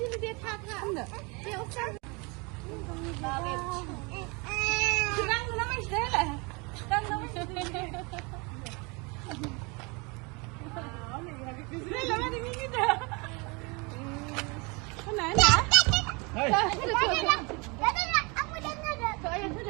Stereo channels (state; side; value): quieter; left; 29.2 dB